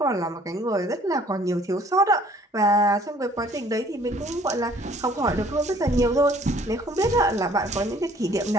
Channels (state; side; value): normal; both; correlation 0.57